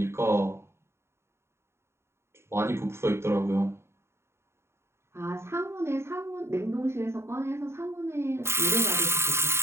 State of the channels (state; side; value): late; left; 0.13 ms